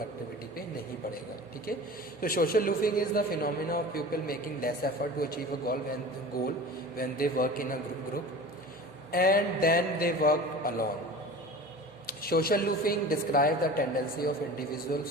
पे नहीं पड़ेगा। ठीक है, तो social loafing is the phenomena of people making less effort to achieve a goal when they work in a group and then they work alone. Social loofing describes the tendency of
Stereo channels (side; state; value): both; normal; correlation 0.37